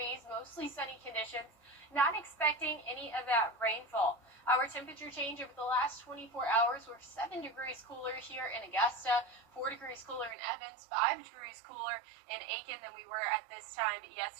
mostly sunny conditions. Not expecting any of that rainfall. Our temperature change over the last 24 hours, we're 7 degrees cooler here in Augusta, 4 degrees cooler in Evans, 5 degrees cooler in Aiken than we were at this time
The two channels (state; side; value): drops out; left; at 10.4 s